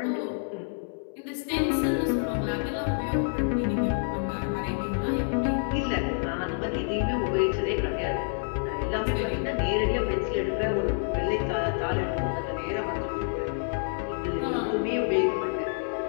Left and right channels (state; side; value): silent; right; 59 dB below the other